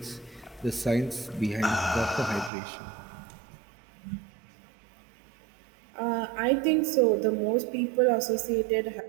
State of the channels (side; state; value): left; drops out; at 2.5 s